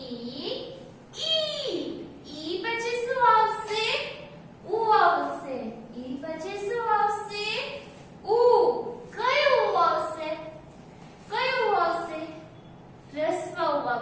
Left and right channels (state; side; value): identical; both; correlation 1.00